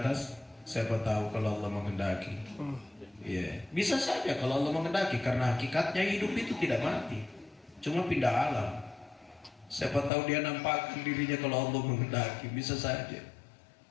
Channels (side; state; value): right; drops out; at 10.1 s